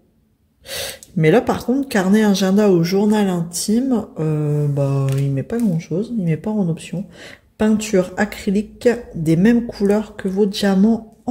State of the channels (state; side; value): identical; both; correlation 1.00